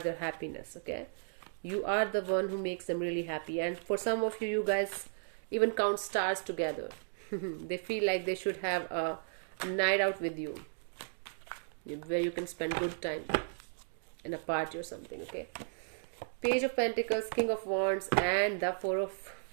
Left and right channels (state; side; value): silent; left; digital silence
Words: happiness, okay? You are the one who makes them really happy, and for some of you, you guys even count stars together. They feel like they should have a night out with you where you can spend good time in a party or something, okay? Page of Pentacles, King of Wands, and the Four of